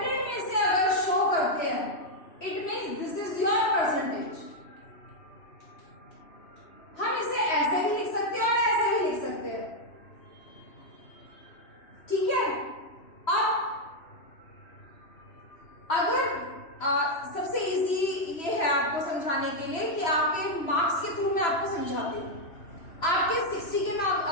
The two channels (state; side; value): late; right; 3.0 ms